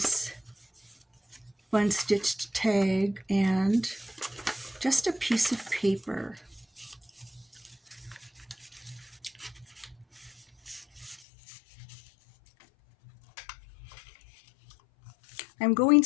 fun stitched tag, and just a piece of paper. I'm going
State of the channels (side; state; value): right; drops out; at 11.2 s